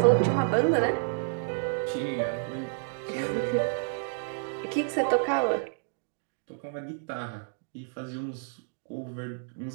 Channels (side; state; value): left; silent; digital silence